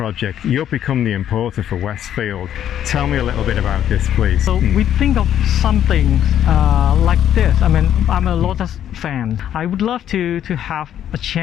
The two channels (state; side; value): quieter; right; 10.4 dB